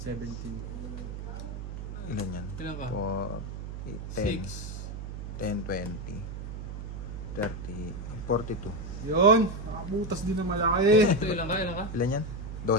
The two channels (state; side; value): noise; right; hum, 7 dB below the sound